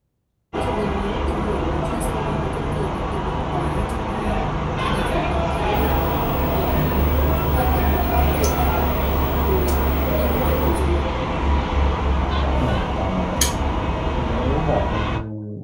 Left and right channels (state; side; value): identical; both; correlation 1.00